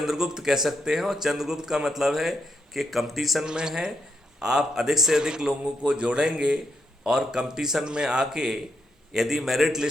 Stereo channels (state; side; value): normal; both; correlation 0.79